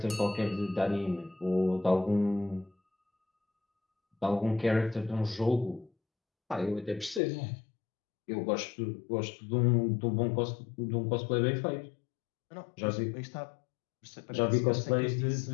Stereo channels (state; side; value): drops out; right; at 7.2 s